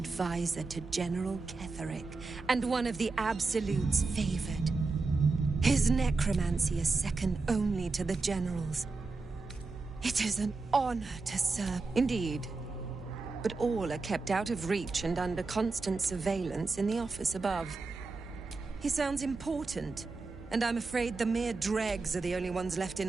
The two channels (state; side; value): quieter; left; 3.9 dB